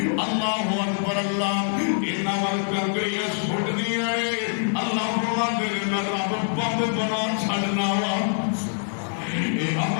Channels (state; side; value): silent; right; 62 dB below the other